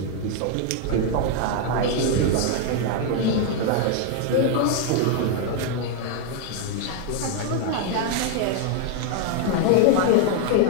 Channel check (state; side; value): different; both; correlation 0.00